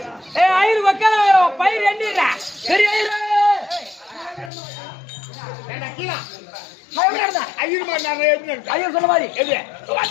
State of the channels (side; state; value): right; drops out; at 4.5 s